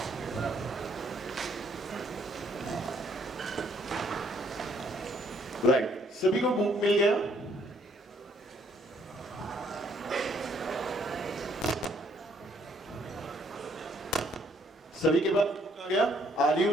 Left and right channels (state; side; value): normal; both; correlation 0.67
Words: Right. सभी को book मिल गया? सभी के पास बुक आ गया? Are